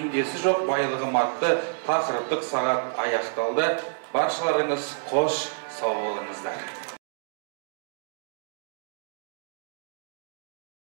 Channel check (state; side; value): silent; left; digital silence